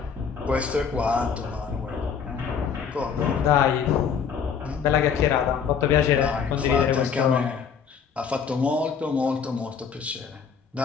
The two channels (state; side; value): quieter; right; 6.8 dB